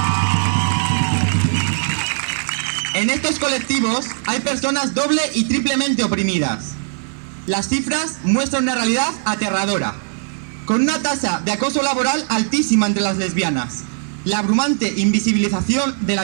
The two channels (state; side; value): silent; left; 66 dB below the other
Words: En estos colectivos hay personas doble y triplemente oprimidas. Las cifras muestran una realidad aterradora, con una tasa de acoso laboral altísima entre las lesbianas, la abrumante invisibilización de la